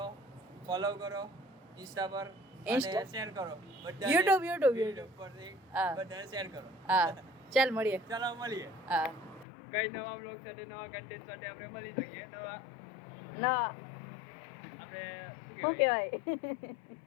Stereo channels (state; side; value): drops out; right; at 9.5 s